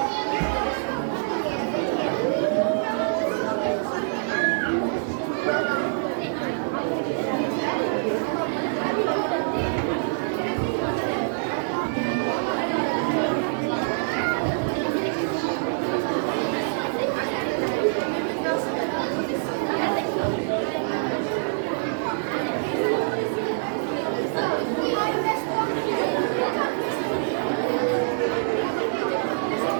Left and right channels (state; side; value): silent; left; digital silence